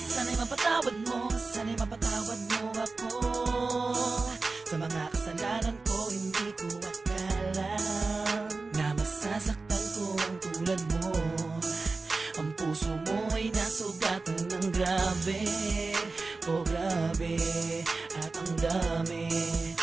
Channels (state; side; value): quieter; left; 3.8 dB